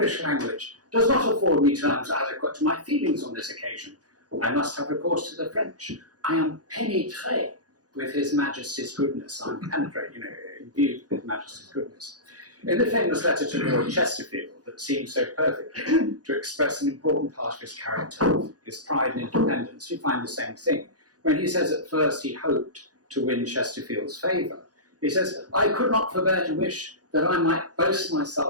language does not afford me terms adequate to my feelings on this occasion. I must have recourse to the French. I am pénétré with His Majesty's goodness." I'm penetrated, imbued with His Majesty's goodness. In the famous letter to Lord Chesterfield that seems so perfectly to express an important part of his character, his pride and independence, you find the same thing. When he says at first he hoped to win Chesterfield's favour, he says, "I could not forbear to wish that I might boast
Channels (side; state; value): left; late; 0.68 ms